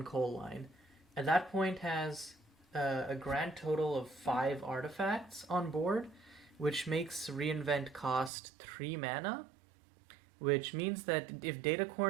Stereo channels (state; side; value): drops out; left; at 8.3 s